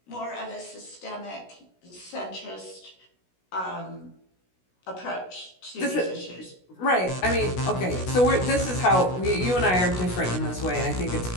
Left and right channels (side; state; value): right; late; 16 ms